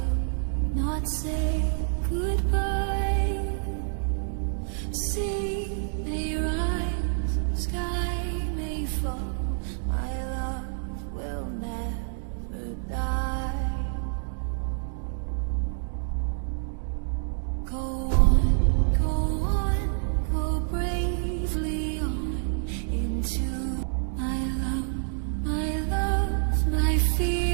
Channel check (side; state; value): left; silent; digital silence